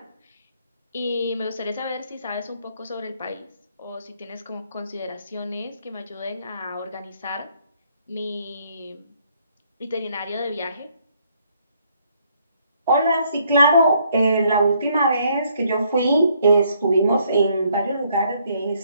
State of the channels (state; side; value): inverted; both; correlation -0.68